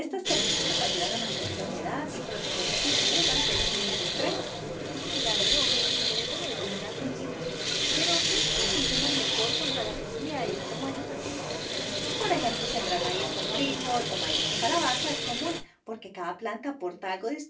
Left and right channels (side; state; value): both; identical; correlation 1.00